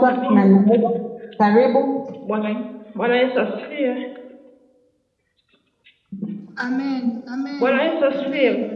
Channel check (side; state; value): both; identical; correlation 1.00